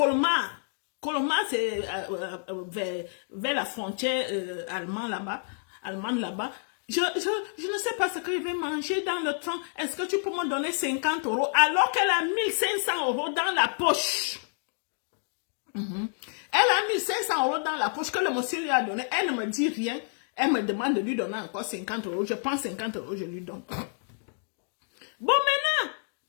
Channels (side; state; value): right; silent; 59 dB below the other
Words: Colmar, c'est vers la frontière allemande là-bas. Je ne sais pas ce que je vais manger dans le train. Est-ce que tu peux me donner 50 € alors qu'elle a 1500 € dans la poche? Elle a 1500 € dans la poche que le monsieur lui a donné. Elle ne me dit rien. Elle me demande de lui donner encore 50 €. Je prends 50 €, je lui donne. Bon, maintenant,